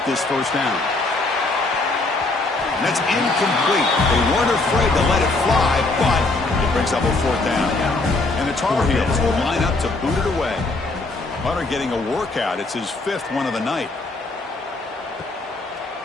this 1st down? And that's incomplete. They weren't afraid to let it fly, but it brings up a 4th down. And the Tar Heels will line up to boot it away. Hunter getting a workout. It's his 5th one of the night.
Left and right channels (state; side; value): quieter; right; 3.2 dB